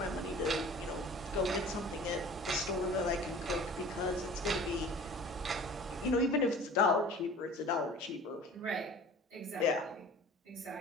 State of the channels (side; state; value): both; normal; correlation 0.44